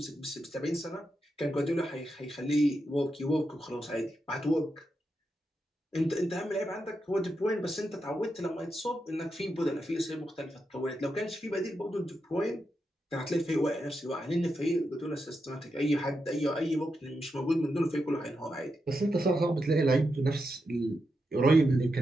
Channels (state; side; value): normal; both; correlation 0.86